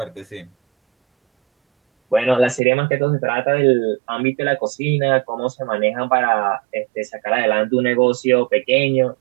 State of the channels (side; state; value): left; drops out; at 2.6 s